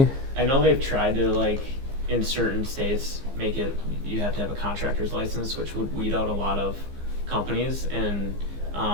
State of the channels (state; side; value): late; left; 15 ms